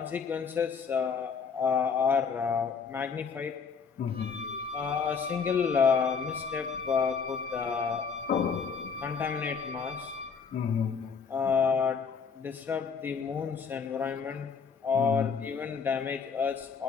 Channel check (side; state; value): right; quieter; 5.8 dB